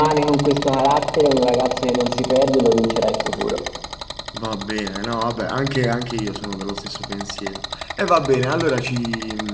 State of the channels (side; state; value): both; identical; correlation 1.00